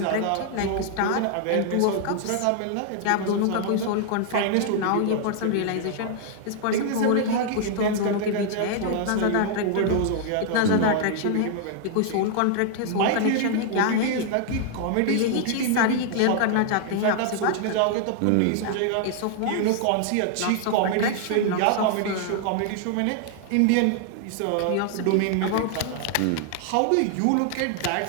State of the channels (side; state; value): both; different; correlation 0.00